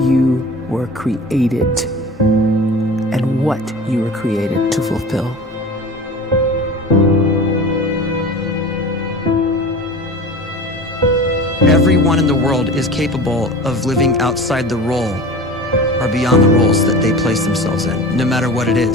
you were created and what you were created to fulfill. Everyone in the world is capable of living outside the role or beyond the roles that they place themselves in, no matter what it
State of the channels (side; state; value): both; normal; correlation 0.36